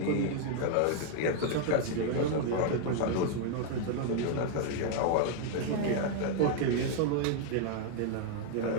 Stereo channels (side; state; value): both; different; correlation 0.00